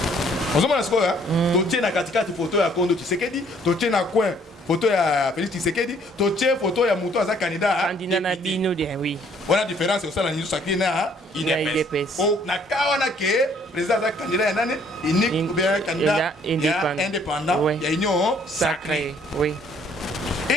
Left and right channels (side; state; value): both; normal; correlation 0.62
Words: Vous avez une photo de Kondo Tshisekedi, tu as coin photo de Félix Tshisekedi, tu as une photo de Mouto Aza candidat. Candidat Nabino, oui. Voilà la différence, c'est ça la niche sacrée na IDPS. Oh, na kawana ke président Aza candidat nani unique ou bien candidat indépendant, il y a union sacrée. Oui.